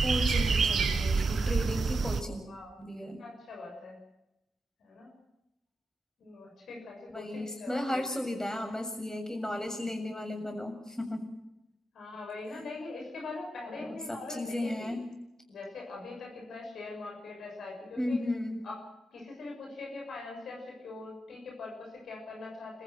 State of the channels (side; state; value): both; normal; correlation 0.87